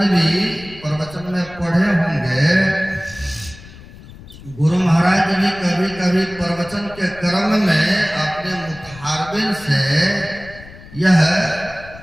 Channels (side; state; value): left; noise; rumble, 19 dB below the sound